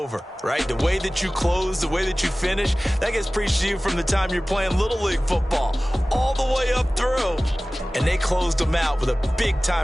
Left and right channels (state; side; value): normal; both; correlation 0.97